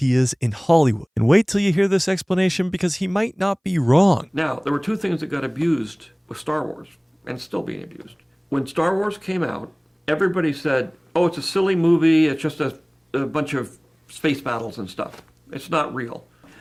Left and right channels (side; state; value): both; identical; correlation 1.00